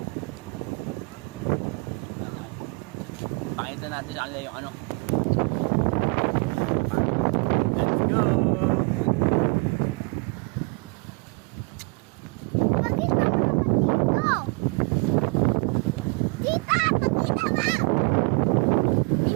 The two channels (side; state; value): left; quieter; 30.9 dB